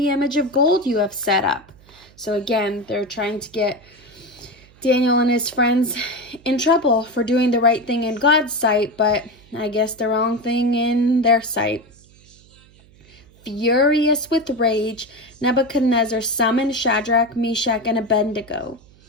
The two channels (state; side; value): noise; right; hum, 27 dB below the sound